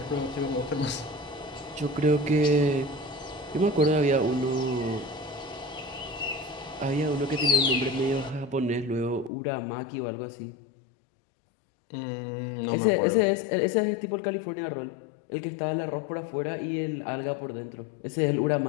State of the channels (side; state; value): right; drops out; at 9.3 s